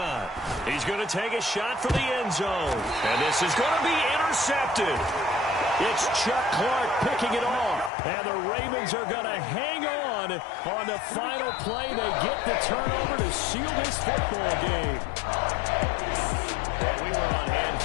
He's going to take a shot for the end zone. And this is going to be intercepted. It's Chuck Clark picking it off. And the Ravens are going to hang on the final play. They get the turnover to seal this football game. Well, we were on hand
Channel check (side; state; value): right; drops out; at 7.9 s